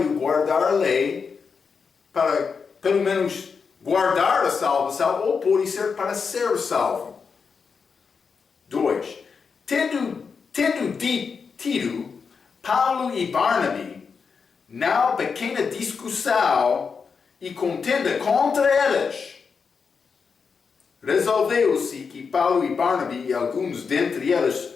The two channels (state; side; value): quieter; right; 5.6 dB